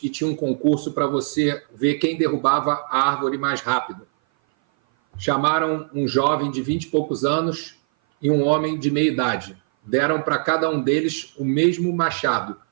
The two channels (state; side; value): silent; left; 57 dB below the other